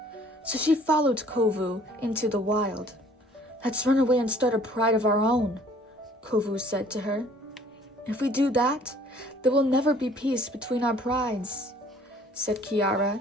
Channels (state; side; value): normal; both; correlation 0.56